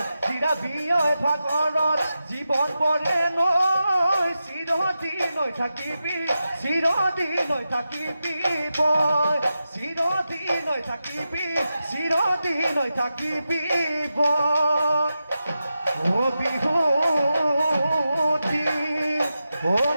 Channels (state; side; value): inverted; both; correlation -0.90